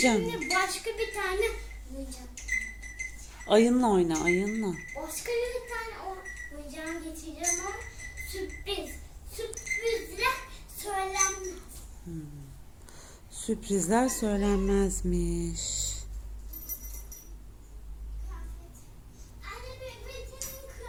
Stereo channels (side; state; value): both; identical; correlation 1.00